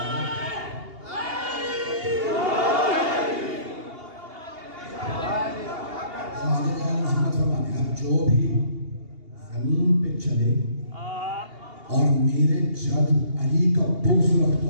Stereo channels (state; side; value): late; left; 2.8 ms